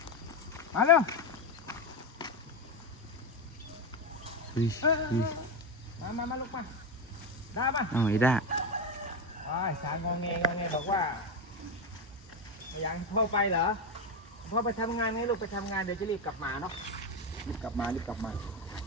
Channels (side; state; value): both; normal; correlation 0.12